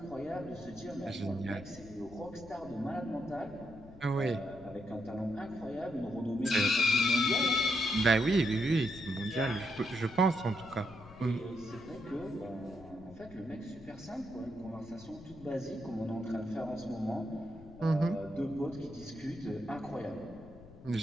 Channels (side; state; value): left; noise; rumble, 18 dB below the sound